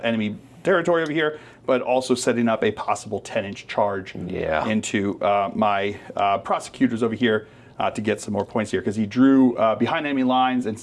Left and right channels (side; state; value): both; identical; correlation 1.00